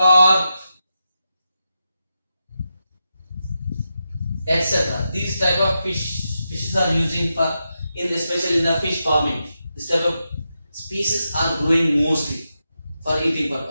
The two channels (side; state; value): both; inverted; correlation -0.87